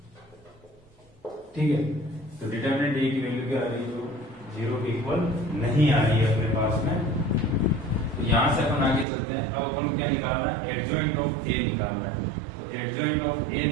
ठीक है, तो डिटरमिनेंट ए की वैल्यू क्या आ रही है, जो 0 के इक्वल नहीं आ रही है अपने पास में। तो यहां से अपन आगे चलते हैं। अब अपन क्या निकालना है, एडजॉइंट ऑफ ए निकालना है। तो एडजॉइंट ऑफ ए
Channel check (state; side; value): drops out; left; at 9.1 s